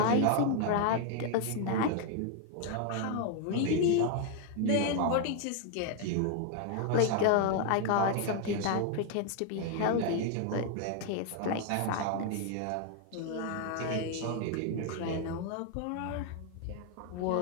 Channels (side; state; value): both; different; correlation 0.00